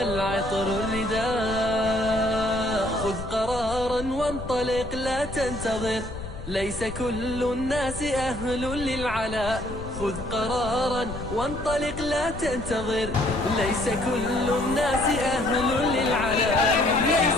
الرداء. خذ قرارا وانطلق لا تنتظر، ليس كل الناس أهل للعلاء. خذ قرارا وانطلق لا تنتظر، ليس كل الناس أهل للعلاء،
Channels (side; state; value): left; noise; rumble, 10 dB below the sound